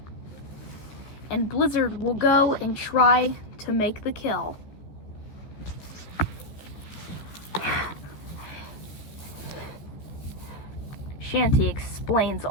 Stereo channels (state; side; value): late; right; 14 ms